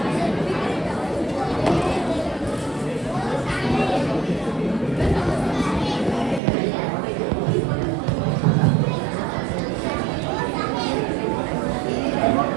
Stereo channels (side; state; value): left; drops out; at 6.4 s